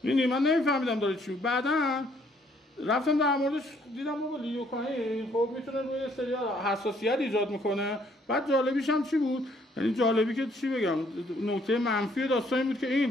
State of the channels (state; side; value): normal; both; correlation 0.65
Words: می‌بینی من نمیفهمیدم داره چی. بعداً رفتم در موردش دیدم بابا لیدوکاین خب میتونه روی سری حساسیت ایجاد میکنه. بعد جالبیش هم چی بود؟ یعنی جالبی که چی بگم نکته منفی داستان این بود که